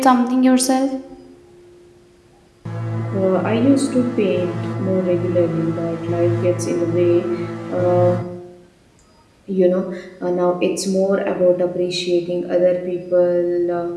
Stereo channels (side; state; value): both; identical; correlation 1.00